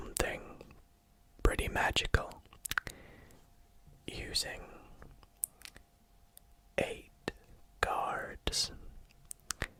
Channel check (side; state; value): both; identical; correlation 1.00